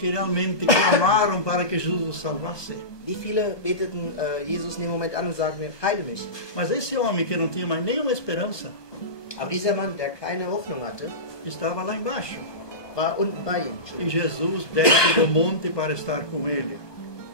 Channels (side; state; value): right; late; 1.2 ms